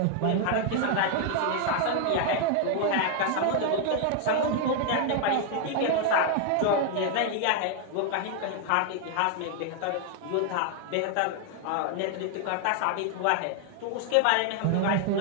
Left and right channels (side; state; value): both; different; correlation 0.00